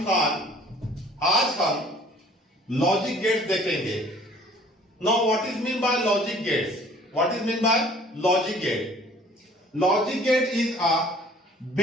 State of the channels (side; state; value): both; normal; correlation 0.53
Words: Khan. आज हम logic gates देखेंगे। Now what is mean by logic gates? What is mean by logic gate? Logic gate is a